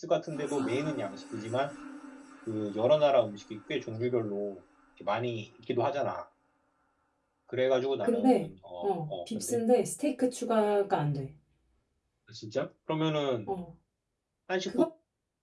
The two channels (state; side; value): identical; both; correlation 1.00